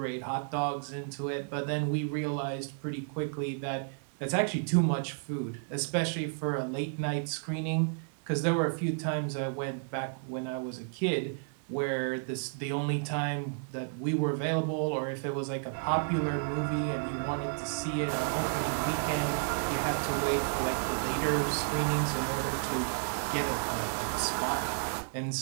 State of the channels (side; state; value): left; silent; 56 dB below the other